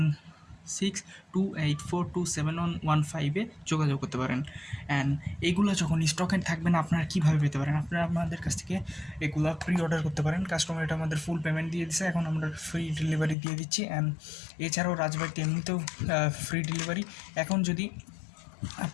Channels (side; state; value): right; drops out; at 13.4 s